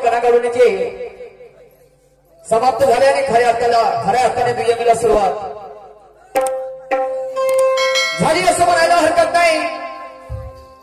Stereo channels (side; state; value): both; identical; correlation 1.00